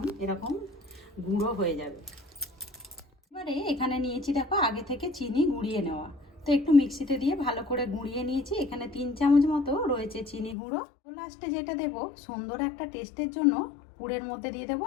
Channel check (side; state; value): right; drops out; at 10.6 s